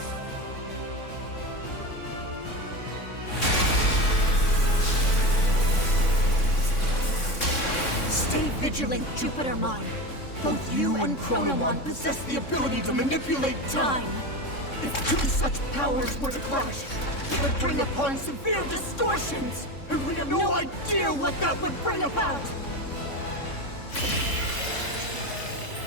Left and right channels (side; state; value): right; late; 3.6 ms